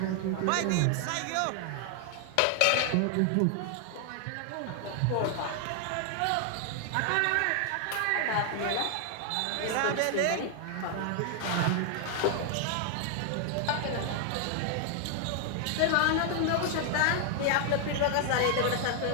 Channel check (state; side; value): different; both; correlation 0.00